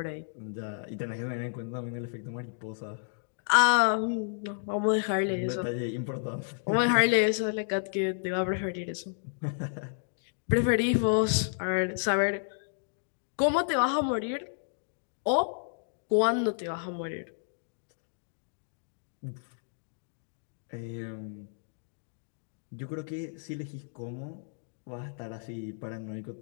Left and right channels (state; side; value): silent; right; digital silence